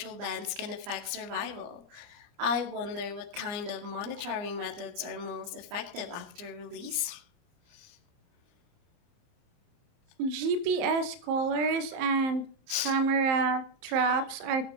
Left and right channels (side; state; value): left; late; 29 ms